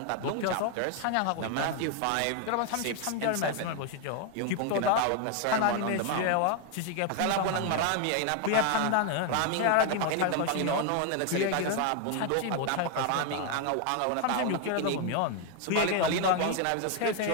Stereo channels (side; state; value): both; different; correlation 0.01